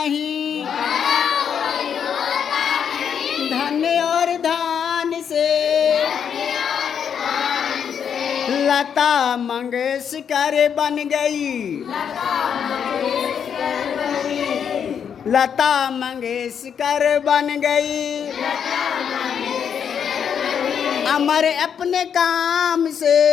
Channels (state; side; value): quieter; right; 7.8 dB